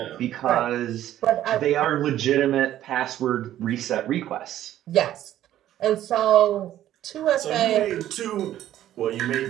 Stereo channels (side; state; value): left; quieter; 12.5 dB